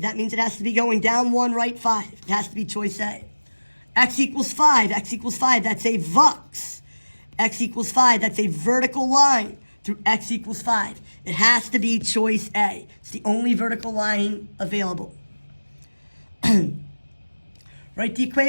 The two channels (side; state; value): both; inverted; correlation -1.00